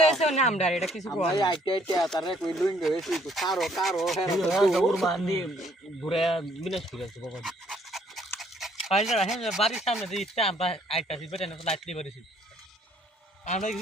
হইছে না আমরা এটা কিছু কই ভাই আইতে আইতে তারে কই লুইং গেছে তো কারো কারো হেরা দৌড় মান্ডি ঘুরে বিনাশ করে আছে বাবা পাইলা হেন বাড়ির সামনে যে ইচ্ছা আমরা আইতাছি বেটা না লাইট দিয়ে বাড়িছি আমরা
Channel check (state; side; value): normal; both; correlation 0.64